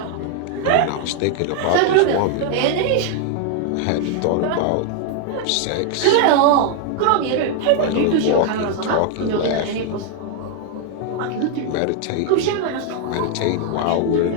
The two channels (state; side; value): different; both; correlation 0.00